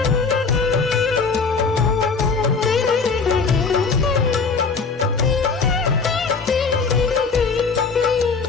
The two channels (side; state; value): right; quieter; 4.8 dB